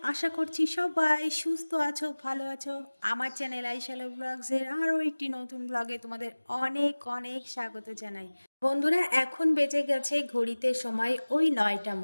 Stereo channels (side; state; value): both; inverted; correlation -1.00